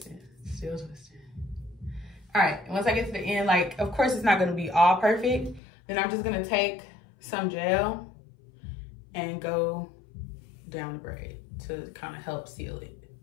still twisting. All right, once I get to the end, like of course it's not gonna be all perfect, then I'm just gonna take some gel and go down the braid to kind of help seal it.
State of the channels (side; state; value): right; drops out; at 5.6 s